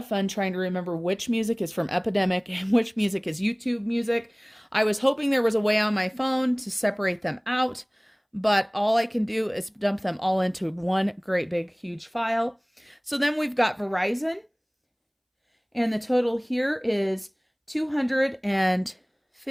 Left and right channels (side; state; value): both; identical; correlation 1.00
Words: fun trying to remember which music is from Epidemic and which music is YouTube music. I was hoping there was a way on my phone to separate them out, but all I can do is dump them all into one great big huge file. So then we've got Verizon, and the total here is